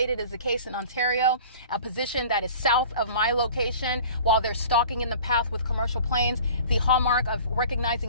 is the case in Ontario, a position that is south of my location while they're stalking in the path with commercial planes. The hallmark of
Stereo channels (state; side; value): inverted; both; correlation -0.44